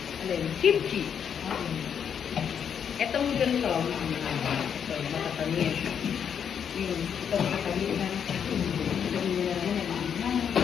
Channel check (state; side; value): quieter; right; 7.8 dB